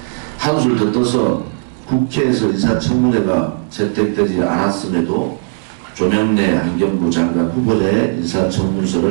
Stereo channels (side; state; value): left; silent; digital silence